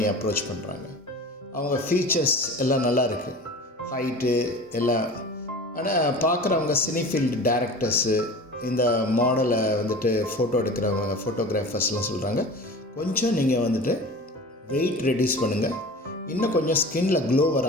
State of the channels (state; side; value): normal; both; correlation 0.36